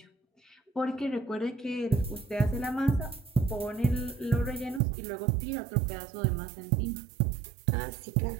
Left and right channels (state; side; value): drops out; left; at 4.8 s